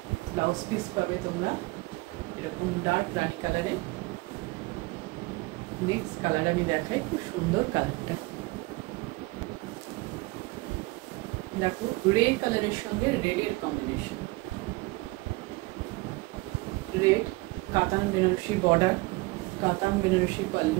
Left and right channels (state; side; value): quieter; left; 23.3 dB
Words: ব্লাউজ পিস পাবে তোমরা এরকম ডার্ক রানি কালারে। নেক্সট কালার আমি দেখাই, খুব সুন্দর কালারটা দেখো, রেড কালারের সঙ্গে রেডের কম্বিনেশন, রেড, কাতান বেনারসি বর্ডার, কাতান বেনারসি